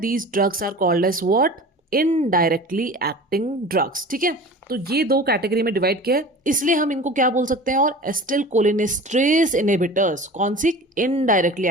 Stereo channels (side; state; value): both; normal; correlation 0.38